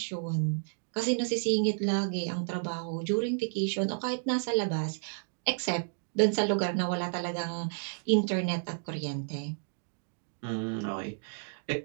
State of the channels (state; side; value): silent; left; digital silence